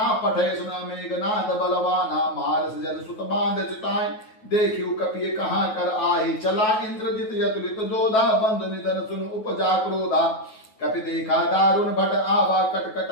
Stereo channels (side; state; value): right; late; 9.3 ms